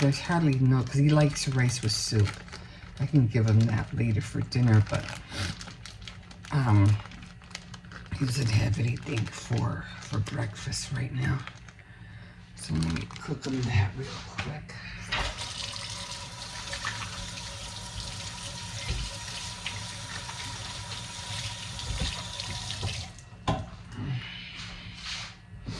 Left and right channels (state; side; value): identical; both; correlation 1.00